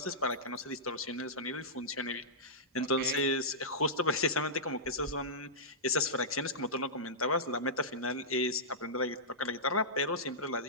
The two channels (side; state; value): both; normal; correlation -0.15